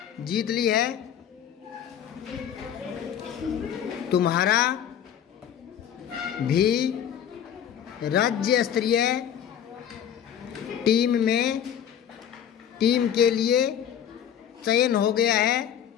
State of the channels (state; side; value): quieter; right; 9.4 dB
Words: जीत ली है। तुम्हारा भी राज्य स्तरीय टीम के लिए चयन हो गया